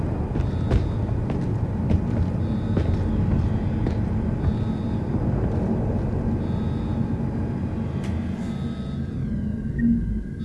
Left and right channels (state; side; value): identical; both; correlation 1.00